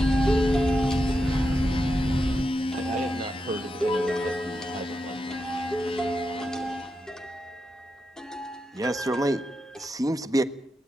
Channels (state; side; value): normal; both; correlation 0.87